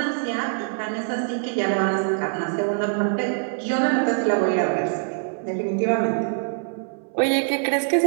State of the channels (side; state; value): left; silent; 63 dB below the other